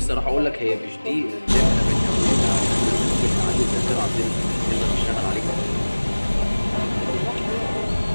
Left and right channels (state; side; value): inverted; both; correlation -1.00